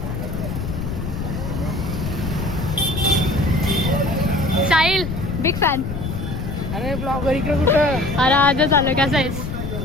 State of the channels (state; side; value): noise; left; rumble, 5 dB below the sound